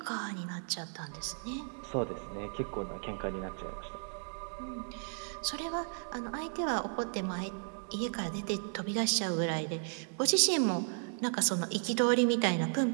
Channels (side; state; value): left; silent; 55 dB below the other